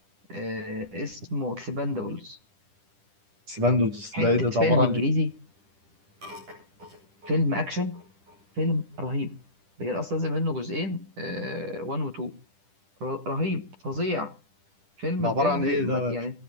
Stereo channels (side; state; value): left; late; 10 ms